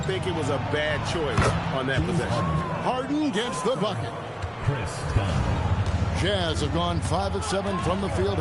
think it was a bad choice on that possession. Harden gets the bucket. Jazz have gone 5 of 7 from the field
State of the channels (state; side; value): identical; both; correlation 1.00